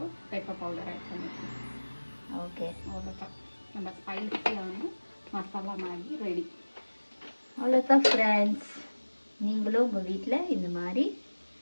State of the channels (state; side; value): inverted; both; correlation -1.00